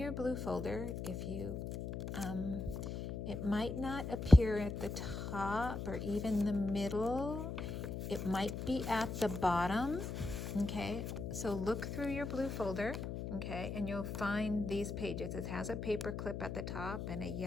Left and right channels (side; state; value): left; noise; hum, 5 dB below the sound